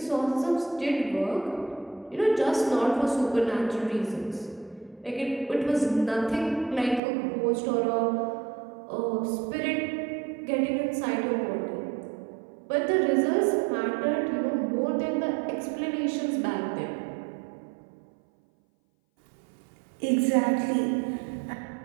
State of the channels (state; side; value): drops out; left; at 7.0 s